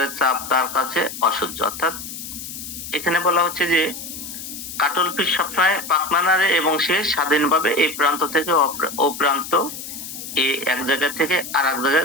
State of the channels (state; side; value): noise; left; hiss, 10 dB below the sound